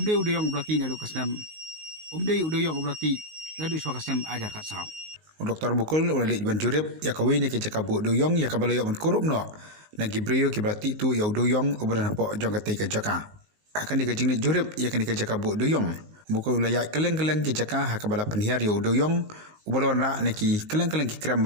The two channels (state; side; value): late; left; 19 ms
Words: oblati nadu kasnam Dewiong oblati nadu swa kasnam ajar kat saw Dr. Mukul ulali ban jurip ya kawini ke jakabu Dewiong ya kabalayo ban kurup no na gibrio ki berarti tu ya Dewiong obran hapo jong kate ke jaka akan dikajing ni jurip ya kan dikajabu Dewiong Mukul layak keleng-keleng ki jaka hakabala penhiar ya Dewiong ubalon ra neki keleng-keleng ki kram